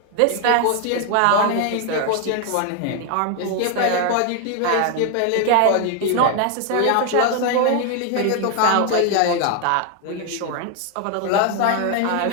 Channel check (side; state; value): both; different; correlation 0.00